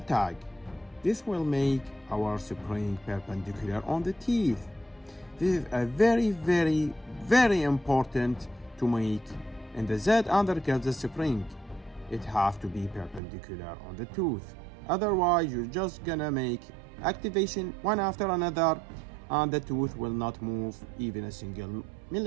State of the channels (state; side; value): drops out; left; at 13.2 s